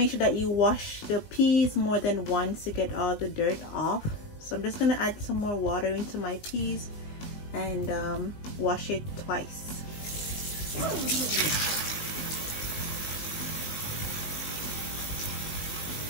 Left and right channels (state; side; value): late; right; 19 ms